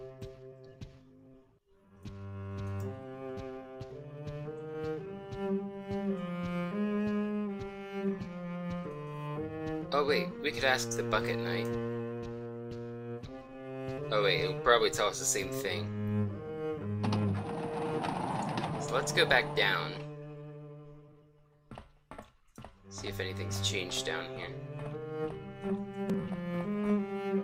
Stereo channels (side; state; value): both; identical; correlation 1.00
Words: Oh wait, we could ask the Bucket Knight. Oh wait, he'll probably tell us the same thing. So let's go back down. See if anything's changed down here.